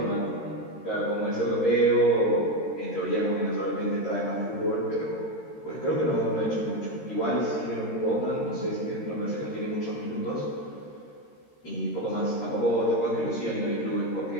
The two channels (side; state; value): right; late; 13 ms